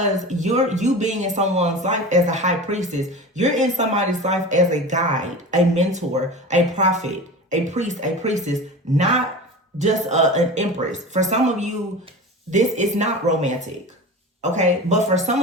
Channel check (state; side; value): normal; both; correlation 0.32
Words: you being in someone's life as a high priestess, you're in somebody's life as a guide, a mentor, a prophet, a priest, a priestess, not just an empress. For some of you, this is not romantic, okay? But for